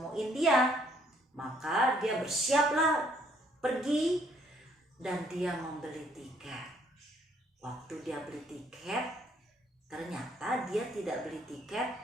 dia. Maka dia bersiaplah pergi dan dia membeli tiket. Waktu dia beli tiket, ternyata dia tidak beli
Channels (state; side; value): normal; both; correlation 0.66